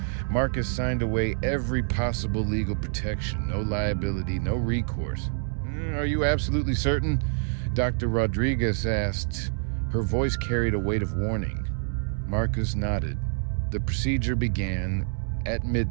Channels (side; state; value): left; silent; 60 dB below the other